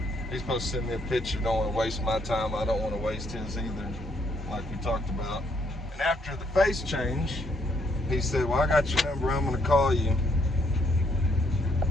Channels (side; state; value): both; normal; correlation 0.70